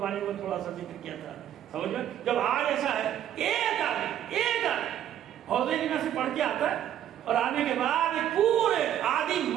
میں تھوڑا سا ذکر کیا تھا. سمجھ میں جب آج ایسا ہے ایک آدمی حوضے جنہ سے پڑھ کے آتا ہے اور آنے کے بعد پورے آدھی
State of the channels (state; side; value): quieter; left; 10.9 dB